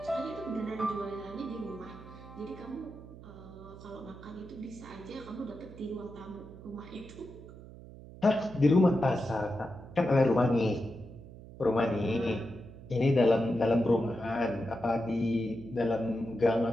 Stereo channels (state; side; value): noise; right; hum, 16 dB below the sound